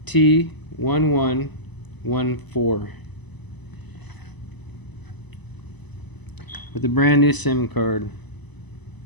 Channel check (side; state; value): right; late; 1.0 ms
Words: T1114 with a brand new SIM card.